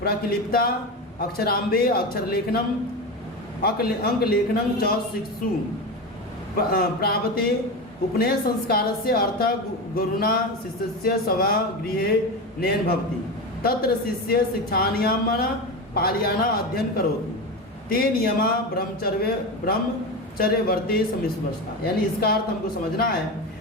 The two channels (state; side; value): normal; both; correlation 0.21